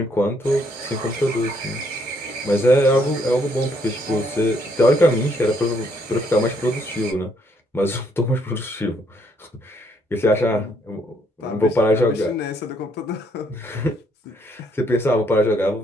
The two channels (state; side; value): normal; both; correlation 0.70